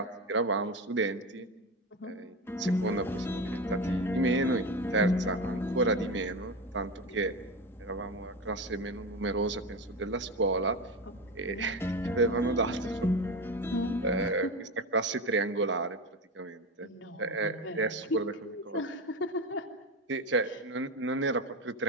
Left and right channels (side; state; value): both; normal; correlation 0.21